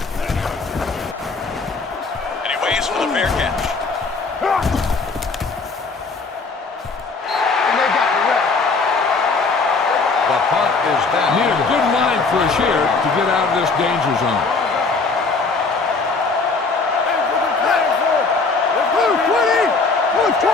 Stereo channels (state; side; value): quieter; right; 4.2 dB